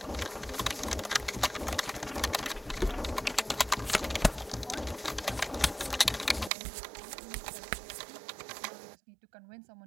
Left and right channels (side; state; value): left; drops out; at 6.5 s